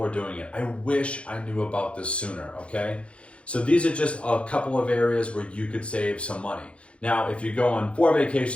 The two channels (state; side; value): late; right; 0.060 ms